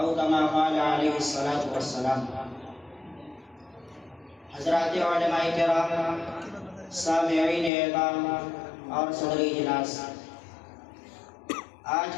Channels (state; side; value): drops out; right; at 7.7 s